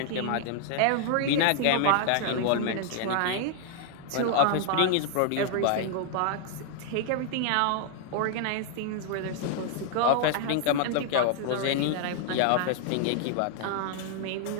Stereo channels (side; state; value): both; different; correlation 0.00